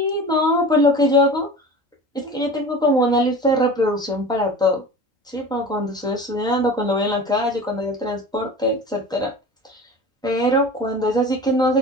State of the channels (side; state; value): both; normal; correlation 0.36